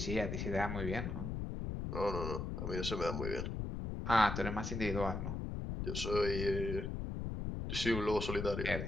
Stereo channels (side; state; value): left; noise; rumble, 3 dB below the sound